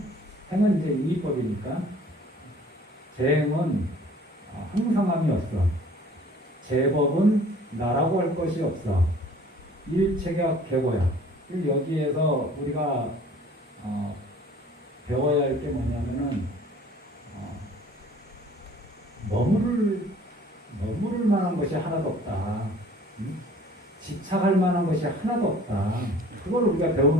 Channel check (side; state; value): both; normal; correlation 0.51